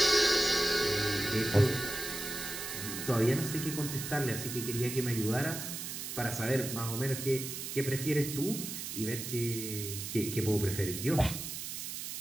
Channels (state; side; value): noise; right; hiss, 6 dB below the sound